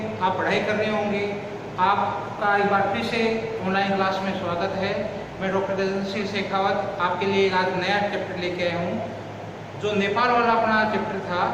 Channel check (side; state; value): both; identical; correlation 1.00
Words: आप पढ़ाई कर रहे होंगे, आपका एक बार फिर से ऑनलाइन क्लास में स्वागत है। मैं डॉक्टर तेजस्वी शेखावत आपके लिए आज नया चैप्टर लेके आया हूँ। जो नेपाल वाला अपना चैप्टर था